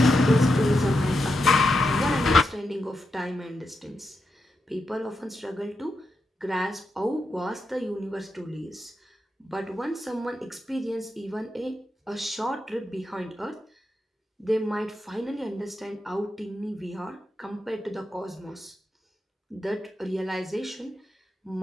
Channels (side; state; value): both; normal; correlation 0.86